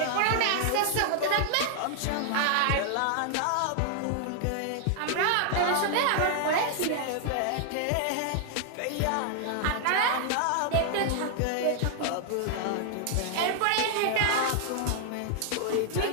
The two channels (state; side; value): different; both; correlation -0.01